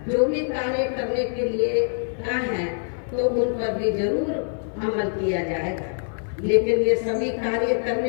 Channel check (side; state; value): right; silent; 57 dB below the other